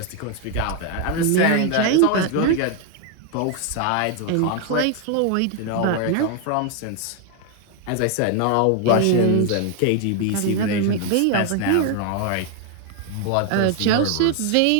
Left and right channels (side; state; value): both; different; correlation 0.01